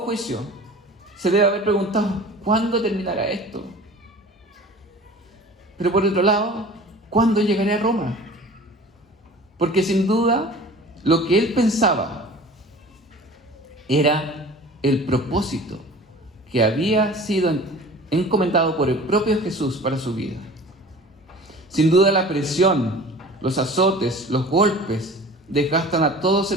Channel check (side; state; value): both; normal; correlation 0.42